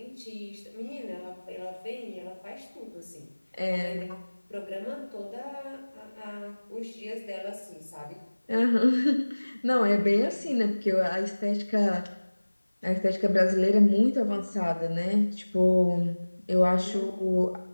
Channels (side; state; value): both; inverted; correlation -1.00